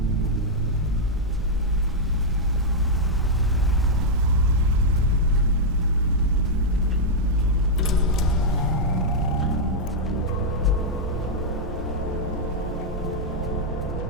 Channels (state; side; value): normal; both; correlation -0.04